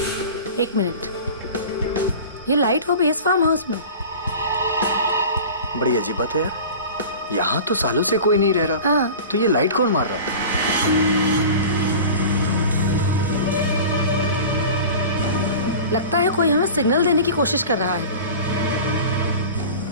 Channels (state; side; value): inverted; both; correlation -0.36